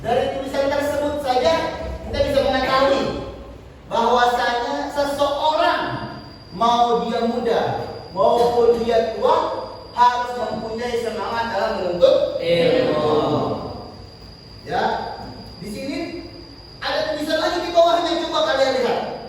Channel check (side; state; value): both; identical; correlation 1.00